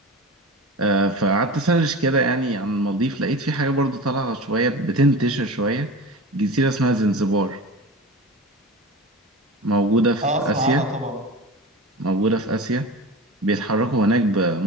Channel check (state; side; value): normal; both; correlation 0.31